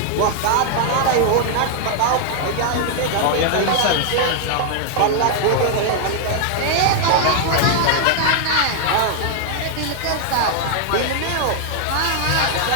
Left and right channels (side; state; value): both; different; correlation 0.00